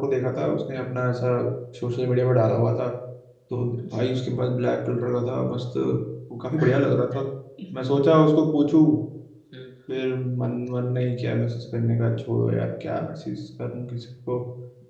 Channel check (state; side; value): identical; both; correlation 1.00